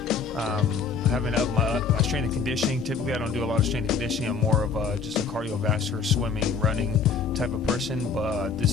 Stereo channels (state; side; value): quieter; right; 5.5 dB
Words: I haven't upped my strength and conditioning. Typically, I don't do a lot of strength and conditioning. I'm more of just a cardiovascular, swimming, running type of person. But